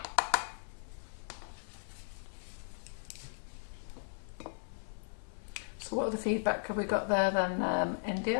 so what other feedback have we got there then,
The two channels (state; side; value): silent; right; 53 dB below the other